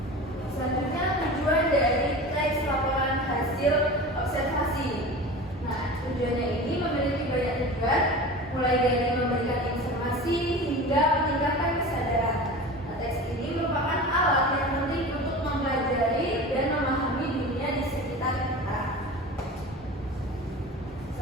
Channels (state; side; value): normal; both; correlation 0.34